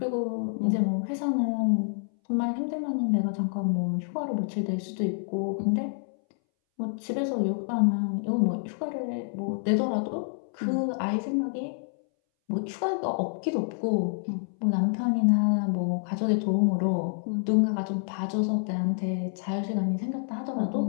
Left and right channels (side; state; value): right; silent; 59 dB below the other